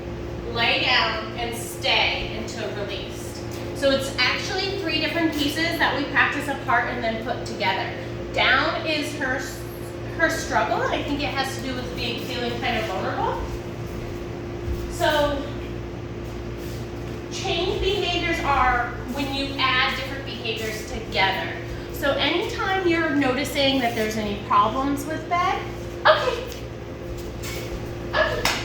lay down, and stay until released. So it's actually 3 different pieces that we practice apart and then put together. Down is her struggle, and I think it has to do with feeling kind of vulnerable. So change behaviors are when you add different behaviors together. So anytime you're noticing that there's any problems with bed, okay.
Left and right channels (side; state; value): both; identical; correlation 1.00